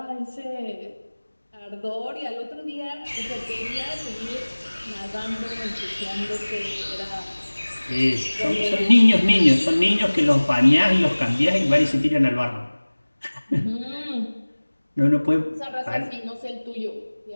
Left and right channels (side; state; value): both; inverted; correlation -1.00